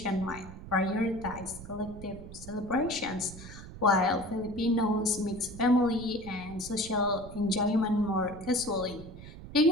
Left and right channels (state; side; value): noise; right; rumble, 14 dB below the sound